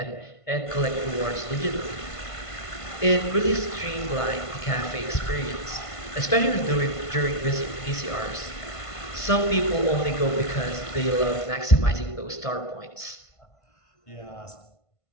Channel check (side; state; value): right; late; 1.5 ms